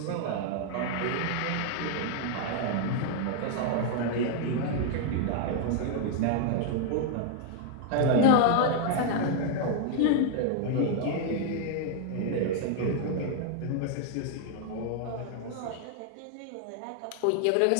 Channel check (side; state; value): both; different; correlation 0.00